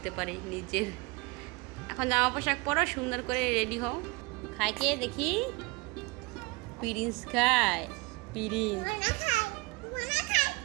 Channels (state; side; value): quieter; left; 25.4 dB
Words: পারে নিজের। এখন জামা পোশাক পরো, সুন্দর করে রেডি হও। খায় কে দেখি? প্রিন্স খায়।